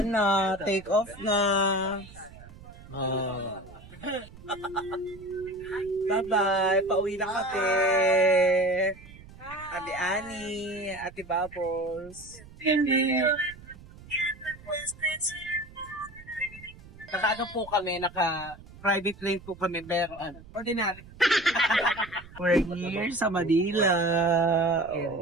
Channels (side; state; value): right; noise; rumble, 19 dB below the sound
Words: na, take off na. Bye-bye, pauwi na kami. Ate Annie, Ate Bubbles. Naka-ano po kami, naka-private plane po kami, pero ordinary. We're here sa Manila.